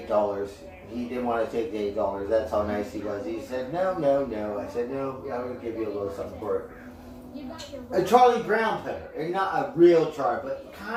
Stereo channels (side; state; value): both; identical; correlation 1.00